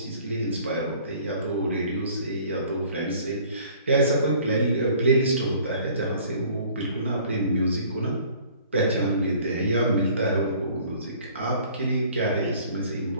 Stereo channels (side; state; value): both; inverted; correlation -0.53